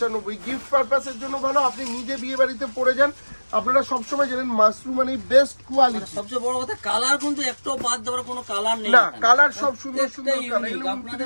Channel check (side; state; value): both; inverted; correlation -1.00